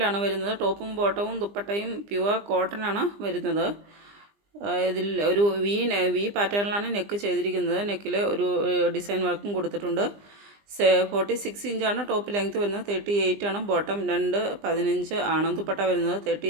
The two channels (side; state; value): left; late; 20 ms